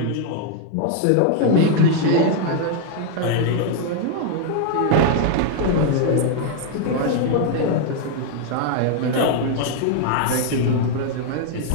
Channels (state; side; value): different; both; correlation 0.00